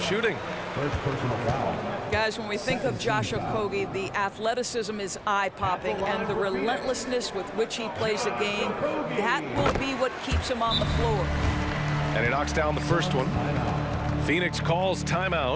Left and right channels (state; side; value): identical; both; correlation 1.00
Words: shooting. First personal foul. Guys, when we think of Josh Okogie, the athleticism is eye-popping, and the relentlessness with which he plays the game, that will be what keeps him on the floor. And he knocks down the first one. Phoenix calls